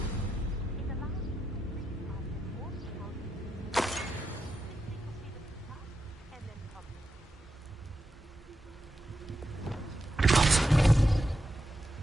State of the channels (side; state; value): both; normal; correlation 0.86